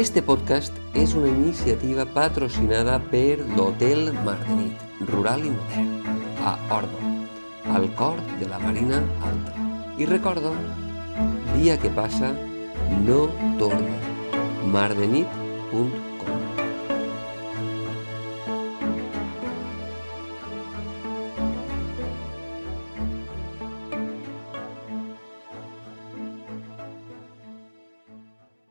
podcast és una iniciativa patrocinada per l'Hotel Mardenit, rural i modern, a Ordo, al cor de la Marina Alta. I recordo, dia que passa, no torna. mardenit.com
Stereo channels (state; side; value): inverted; both; correlation -1.00